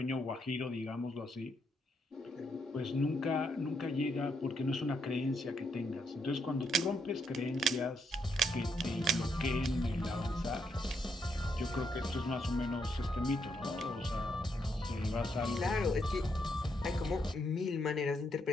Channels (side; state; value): both; normal; correlation 0.78